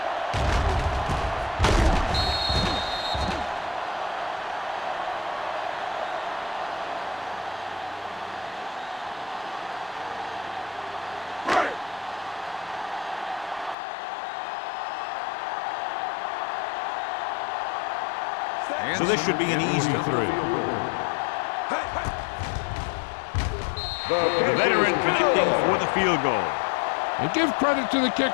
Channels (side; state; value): right; drops out; at 13.8 s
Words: So this should be an easy 3. The veteran connecting for the field goal. And give credit to the